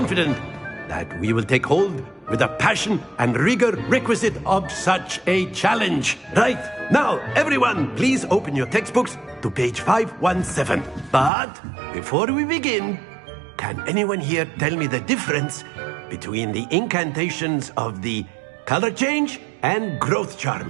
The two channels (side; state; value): left; drops out; at 11.3 s